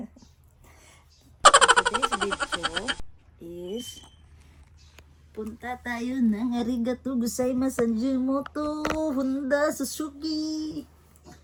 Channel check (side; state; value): both; identical; correlation 1.00